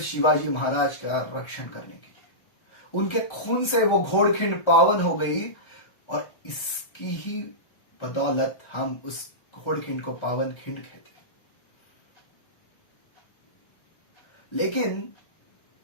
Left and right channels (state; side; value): late; right; 1.4 ms